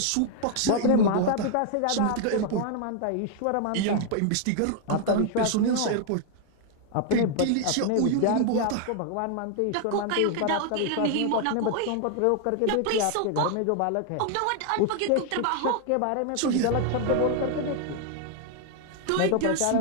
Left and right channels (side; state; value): both; different; correlation 0.00